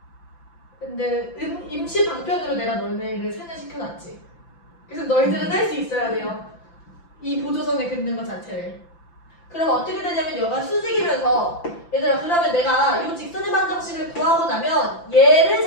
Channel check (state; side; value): late; right; 5.9 ms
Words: 근데 임시 방편으로 내가 너희들을 세뇌시켜놨지. 그래서 너희들은 할 수 있어야 돼요. 이 보조선을 긋는 것 자체를. 그러면 어떻게 되냐면 여기가 수직이면서 얘들아 그러면 내가 이 직선의 방정식을 구하고 나면 얘를